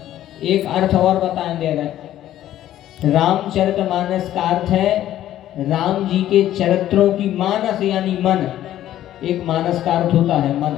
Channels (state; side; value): quieter; right; 12.7 dB